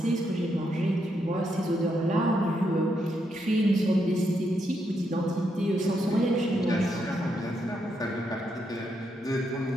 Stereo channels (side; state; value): both; normal; correlation 0.79